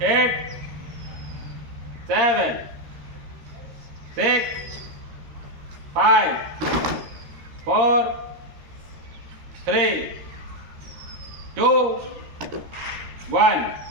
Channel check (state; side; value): late; left; 13 ms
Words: 8, 7, 6, 5, 4, 3, 2, 1.